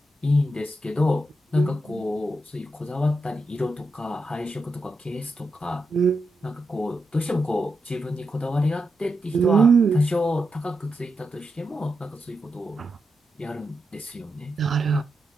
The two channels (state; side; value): normal; both; correlation 0.86